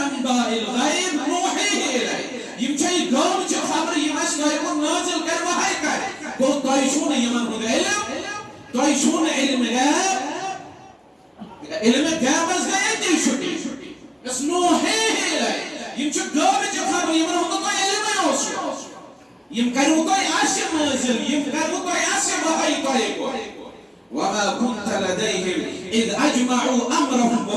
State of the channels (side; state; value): both; identical; correlation 1.00